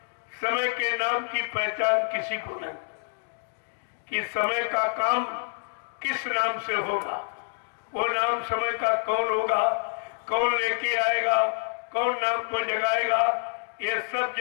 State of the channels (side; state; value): right; silent; 56 dB below the other